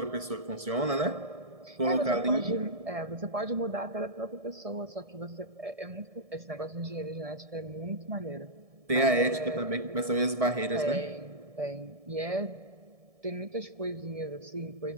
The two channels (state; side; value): late; left; 1.7 ms